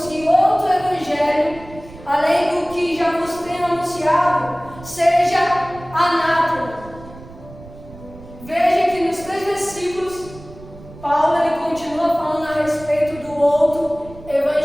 outro Evangelho, além do que já vos tenho anunciado, seja anátema. Veja que nos 3 versículos, Paulo ele continua falando a respeito do outro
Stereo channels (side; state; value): right; noise; rumble, 18 dB below the sound